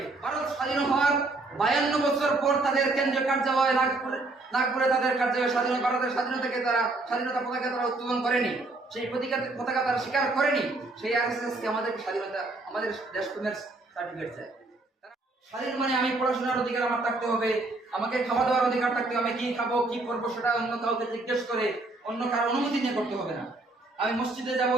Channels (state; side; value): quieter; left; 3.2 dB